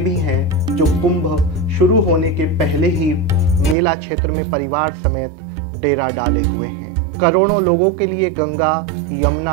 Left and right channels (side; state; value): left; drops out; at 3.8 s